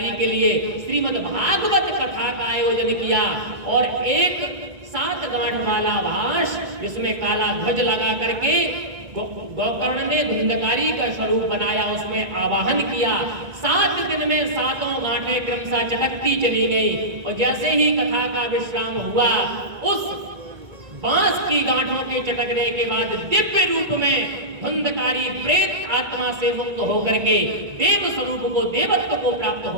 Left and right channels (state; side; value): late; left; 1.9 ms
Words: के लिए श्रीमद् भागवत कथा कथा का आयोजन किया और एक 7 गांठ वाला भाष जिसमें काला ध्वज लगा करके गोकर्ण ने धुंधकारी का स्वरूप बनाया, उसमें आवाहन किया। 7 दिन में 7 गांठें क्रमशः चटकती चली गई और जैसे ही कथा का विश्राम हुआ, उस बांस की गांठों के चटकने के बाद दिव्य रूप में धुंधकारी प्रेत आत्मा से मुक्त होकर के देव स्वरूप को, देवत्व को प्राप्त